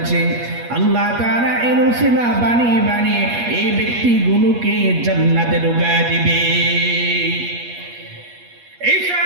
আল্লাহ তাআলা এর উসিলা বানিয়ে বানিয়ে এই ব্যক্তিগুলোকে জান্নাতে ঢুকায় দিবে। ঈসা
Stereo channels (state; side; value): late; left; 8.4 ms